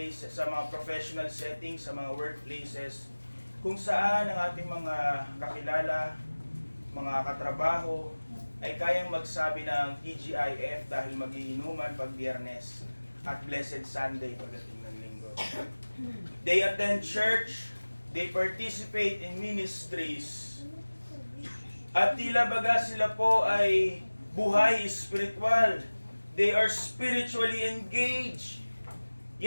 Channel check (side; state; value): both; inverted; correlation -1.00